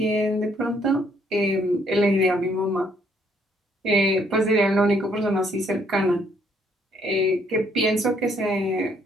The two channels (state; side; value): normal; both; correlation 0.67